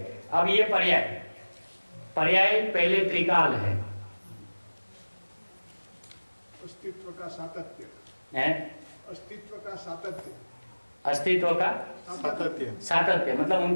अब ये पर्याय पहले त्रिकाल है, अस्तित्व का सातत्य है? अस्तित्व का सातत्य, अस्तित्व का सातत्य मतलब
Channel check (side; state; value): both; inverted; correlation -1.00